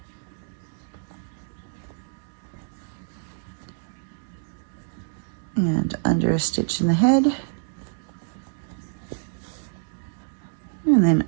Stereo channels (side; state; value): left; silent; digital silence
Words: And under a stitch in the head. And then